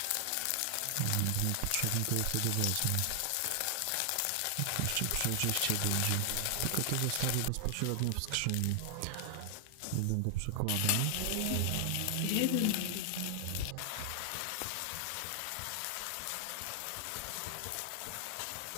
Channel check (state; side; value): different; both; correlation 0.00